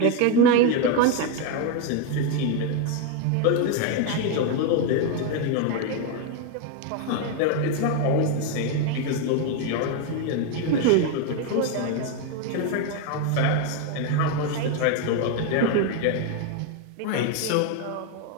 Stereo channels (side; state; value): both; different; correlation 0.01